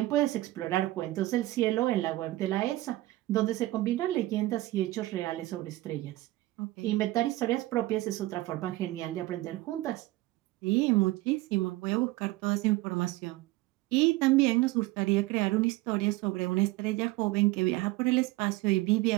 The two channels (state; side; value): quieter; left; 18.1 dB